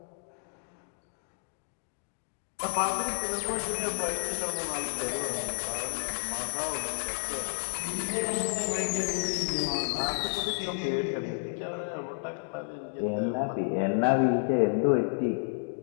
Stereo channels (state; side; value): silent; right; digital silence